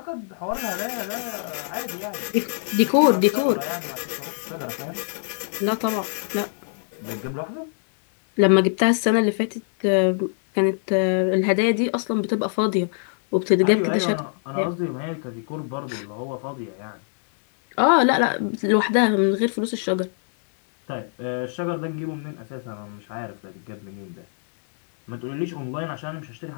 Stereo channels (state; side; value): silent; right; digital silence